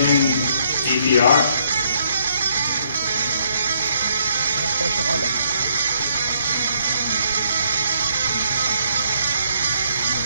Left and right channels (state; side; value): inverted; both; correlation -0.69